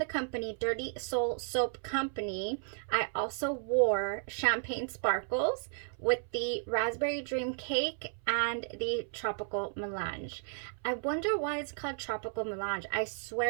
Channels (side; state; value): left; silent; 55 dB below the other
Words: company Dirty Soul Soap Company, I also wore Champagne Sparkles with the Raspberry Dream Cake and the Tropical Melange. I wonder why it's called Tropical Melange. I